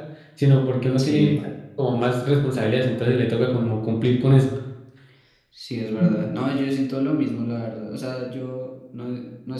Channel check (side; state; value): both; identical; correlation 1.00